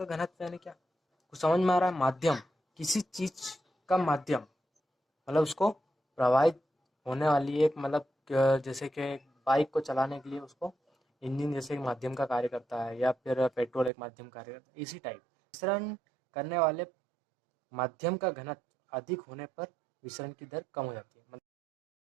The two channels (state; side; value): drops out; left; at 13.9 s